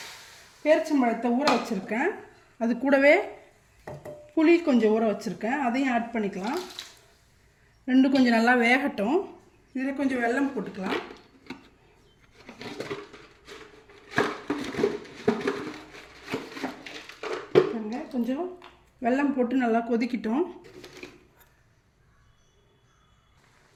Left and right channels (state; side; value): identical; both; correlation 1.00